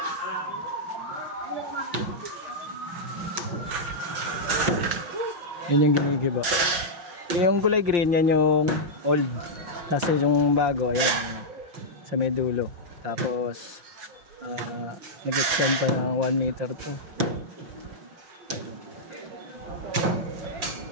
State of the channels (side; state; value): left; late; 6.2 ms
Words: Yan yung ginigiba. Yung kulay green, yan yung old. Kasi yung bago, ayan, sa may dulo. Tapos, nag-extend pa ng 1 meter to.